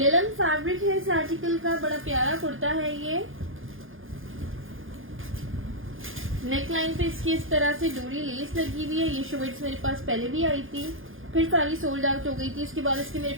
फैब्रिक है इस आर्टिकल का, बड़ा प्यारा कुर्ता है ये। नेक लाइन पे इसकी इस तरह से डोरी लेस लगी हुई है। ये शर्ट्स मेरे पास पहले भी आई थी, फिर सारी सोल्ड आउट हो गई थी। उसके बाद इसके मेरे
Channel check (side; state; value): left; late; 0.59 ms